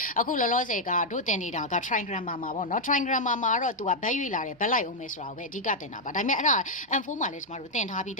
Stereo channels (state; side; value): normal; both; correlation -0.02